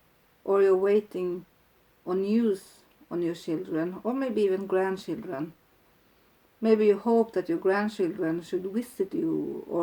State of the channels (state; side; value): identical; both; correlation 1.00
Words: or you're waiting on news on your children, or maybe even grandchildren. Maybe you hope that your grandchildren should visit you,